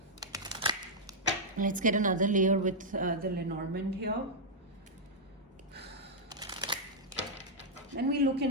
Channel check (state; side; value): normal; both; correlation -0.07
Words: Let's get another layer with the Lenormand here. Then we look